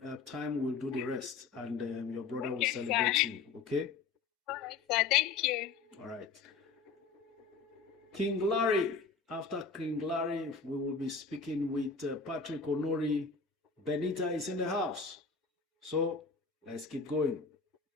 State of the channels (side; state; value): right; quieter; 5.0 dB